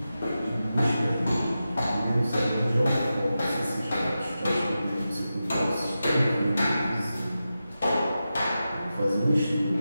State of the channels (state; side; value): inverted; both; correlation -0.92